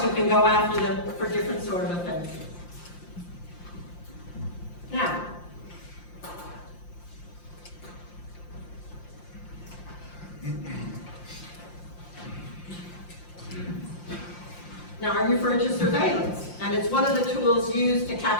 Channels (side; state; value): right; late; 5.7 ms